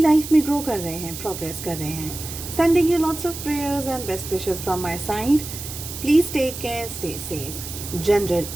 में ग्रो कर रहे हैं, प्रोग्रेस कर रहे हैं। Sending you lots of prayers and best wishes from my side. Please take care, stay safe. General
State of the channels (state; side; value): noise; right; hiss, 9 dB below the sound